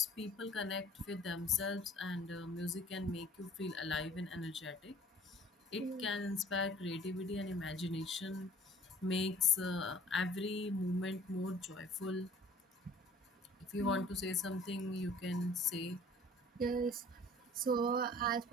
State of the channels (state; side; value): normal; both; correlation 0.51